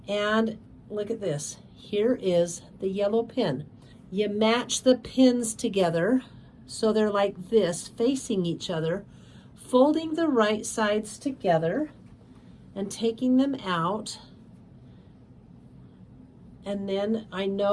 And look at this. Here is the yellow pin. You match the pins together so they're like this, facing each other, folding the right sides together and taking them out. And then I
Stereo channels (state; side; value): identical; both; correlation 1.00